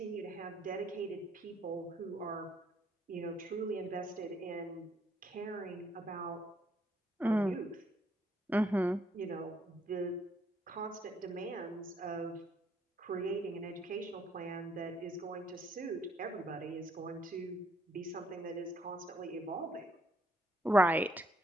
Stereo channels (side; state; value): both; normal; correlation 0.70